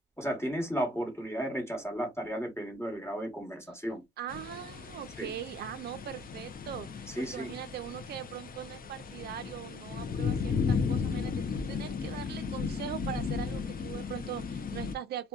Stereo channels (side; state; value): both; normal; correlation 0.58